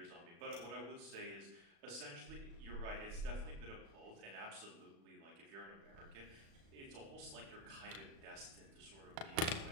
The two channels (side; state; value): left; late; 36 ms